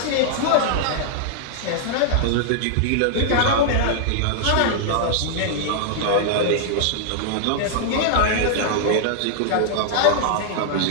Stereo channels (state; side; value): different; both; correlation -0.01